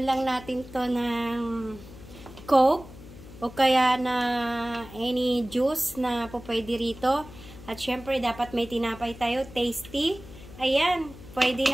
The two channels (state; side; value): noise; left; hum, 17 dB below the sound